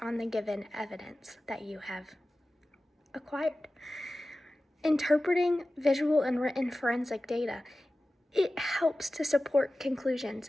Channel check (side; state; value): both; normal; correlation 0.95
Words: on the given evidence that you have acquired. Interpreting visual and written forensic data, it helps to support conclusions,